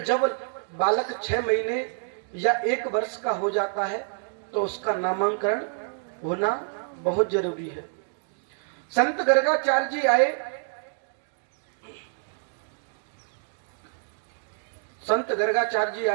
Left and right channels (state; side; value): silent; left; digital silence